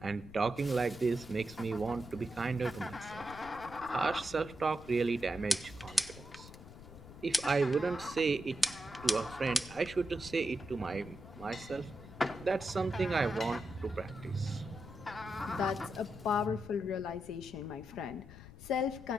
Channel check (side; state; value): left; noise; rumble, 16 dB below the sound